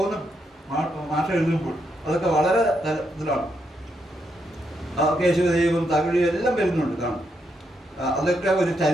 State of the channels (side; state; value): both; normal; correlation 0.79